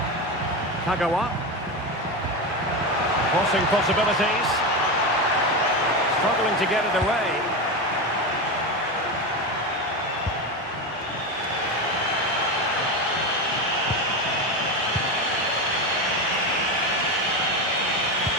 Kagawa. Crossing possibilities. Struggling to get it away.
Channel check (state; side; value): normal; both; correlation 0.17